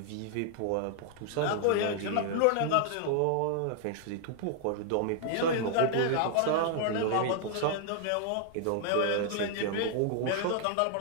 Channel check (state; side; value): different; both; correlation 0.00